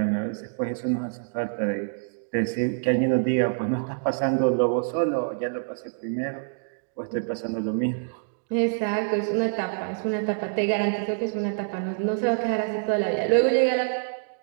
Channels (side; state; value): left; silent; digital silence